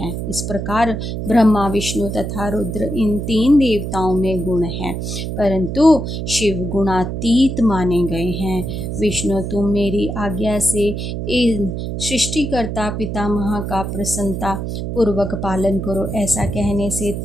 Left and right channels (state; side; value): noise; right; hum, 4 dB below the sound